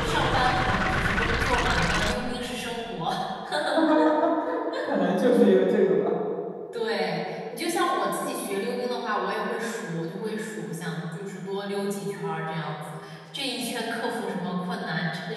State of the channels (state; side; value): identical; both; correlation 1.00